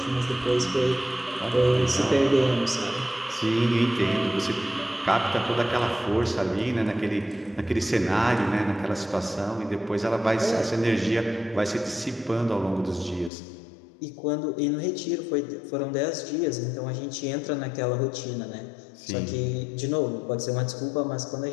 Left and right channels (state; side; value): drops out; right; at 13.3 s